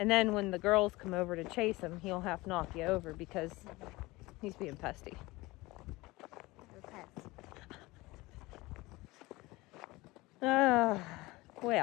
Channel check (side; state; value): right; quieter; 21.3 dB